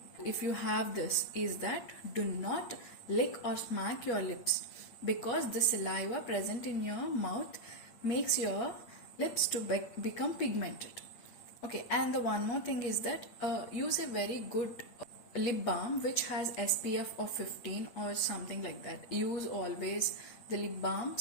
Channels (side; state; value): right; late; 8.7 ms